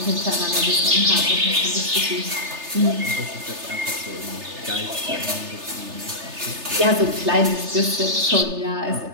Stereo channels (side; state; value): left; late; 3.3 ms